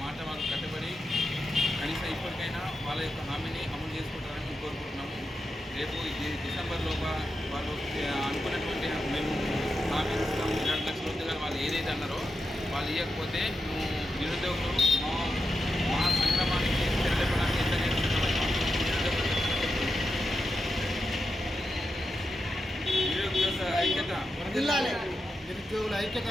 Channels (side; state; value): both; normal; correlation 0.88